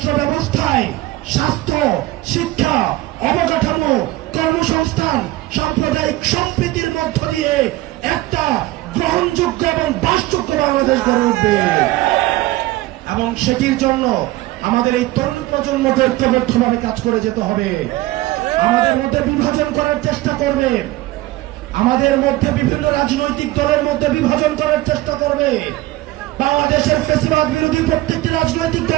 ব্যবস্থায় স্বাস্থ্য, শিক্ষা, অবকাঠামো, কর্মসংস্থান, সাম্প্রদায়িক সম্প্রীতির মধ্য দিয়ে একটা গ্রহণযোগ্য এবং বাসযোগ্য বাংলাদেশ গড়ে উঠবে। এবং সেটির জন্য আমাদের এই তরুণ প্রজন্মকে ঐক্যবদ্ধভাবে কাজ করে যেতে হবে। আমাদের মধ্যে বিভাজন করার চেষ্টা করবে, আমাদের মধ্যে বিভিন্ন রাজনৈতিক দলের মধ্যে বিভাজন করার চেষ্টা করবে। বাংলাদেশের ফ্যাসিবাদ বিরোধী প্রত্যেকটি রাজনৈতিক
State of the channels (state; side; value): quieter; left; 17.8 dB